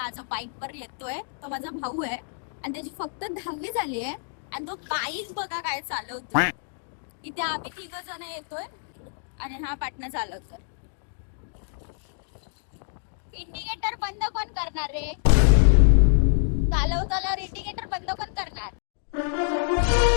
जो बाईक वर येतोय तो माझा भाऊ आहे आणि त्याची फक्त 10वी झाली आहे आणि तो बाईक बघा काय चालवतोय. इथे आम्ही 3 जण येतोय आणि हा पाटणा चालवतोय. इंडिकेटर बंद कोण करणार रे. चालवताना इंडिकेटर बंद कोण करणार.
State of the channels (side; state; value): right; silent; digital silence